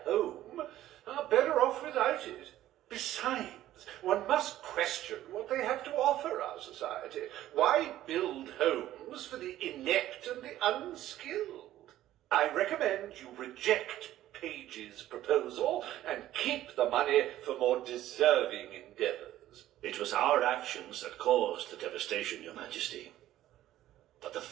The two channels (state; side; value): quieter; left; 13.7 dB